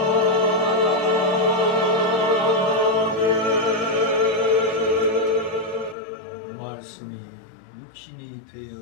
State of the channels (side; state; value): right; drops out; at 6.0 s